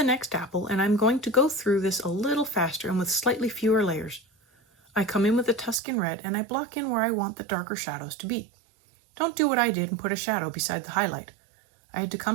next apple, and I'm going to go through this a little faster and with slightly fewer layers. I come in with the Tuscan red and I block in where I want the darker shadows to be. Don't do what I did and put a shadow beside the highlight. I had to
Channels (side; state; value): left; drops out; at 5.8 s